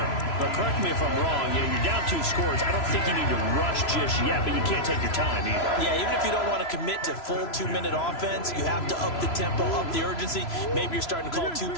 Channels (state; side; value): late; right; 3.0 ms